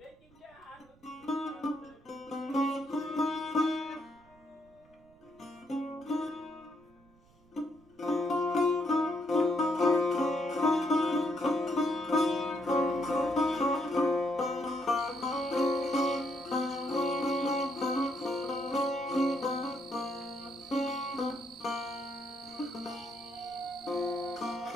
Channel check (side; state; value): right; noise; rumble, 29 dB below the sound